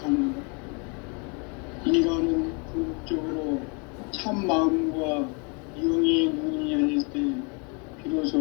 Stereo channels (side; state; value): right; quieter; 34.1 dB